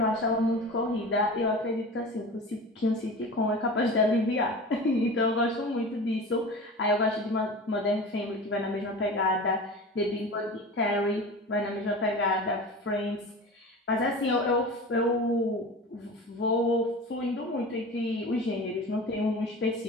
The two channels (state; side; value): normal; both; correlation 0.34